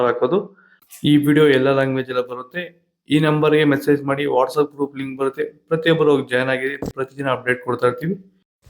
ಹಾಕೋದು. ಈ ವಿಡಿಯೋ ಎಲ್ಲ ಲ್ಯಾಂಗ್ವೇಜ್ ಎಲ್ಲ ಬರುತ್ತೆ. ಈ ನಂಬರ್ಗೆ ಮೆಸೇಜ್ ಮಾಡಿ, ವಾಟ್ಸ್ಆಪ್ ಗ್ರೂಪ್ ಲಿಂಕ್ ಬರುತ್ತೆ, ಪ್ರತಿಯೊಬ್ಬರು ಜಾಯ್ನ್ ಆಗಿರಿ. ಪ್ರತಿದಿನ ಅಪ್ಡೇಟ್ ಕೊಡ್ತಾ ಇರ್ತೀವಿ.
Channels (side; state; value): both; identical; correlation 1.00